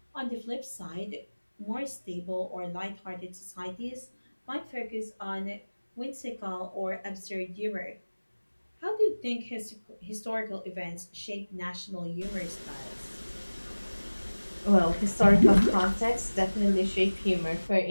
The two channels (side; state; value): both; inverted; correlation -1.00